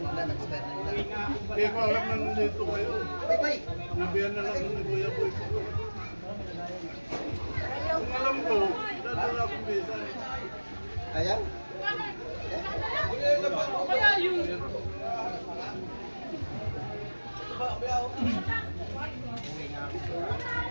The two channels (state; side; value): inverted; both; correlation -1.00